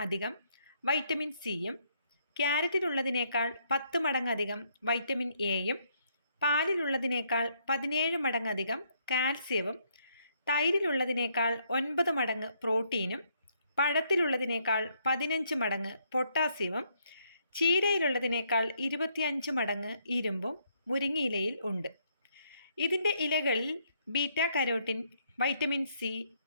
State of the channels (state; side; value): inverted; both; correlation -0.71